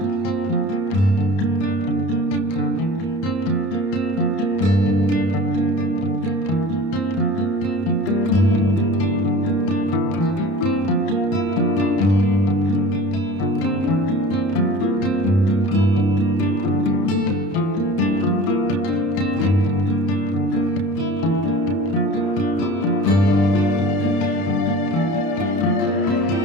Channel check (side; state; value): right; late; 31 ms